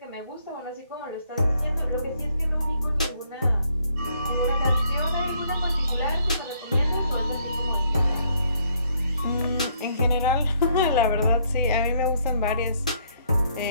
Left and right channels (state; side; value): inverted; both; correlation -0.68